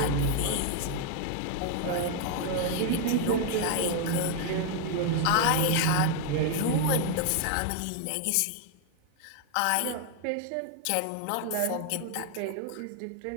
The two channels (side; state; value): both; different; correlation 0.00